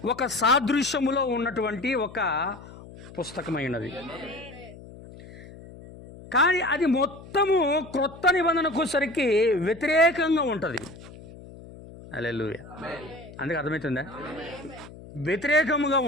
ఒక సాదృశ్యములో ఉన్నటువంటి ఒక పుస్తకమైనది. కానీ అది మొత్తము క్రొత్త నిబంధనకు సరికి వ్యతిరేకంగా ఉంటుంది. హల్లెలూయా. అందుకే అర్థమవుతుందా? వ్యతిరేకముగా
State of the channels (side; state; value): left; noise; hum, 17 dB below the sound